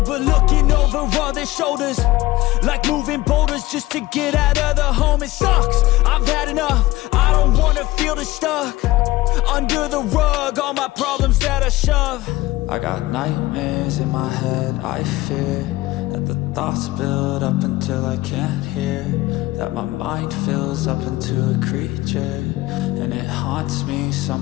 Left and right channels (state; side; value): quieter; right; 18.0 dB